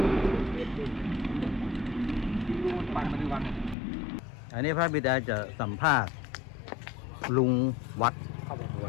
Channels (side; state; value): right; drops out; at 3.8 s